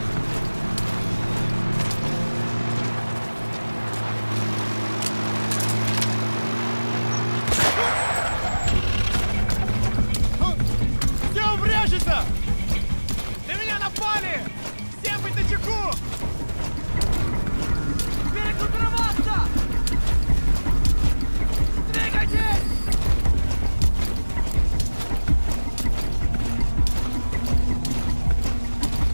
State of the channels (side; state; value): both; inverted; correlation -1.00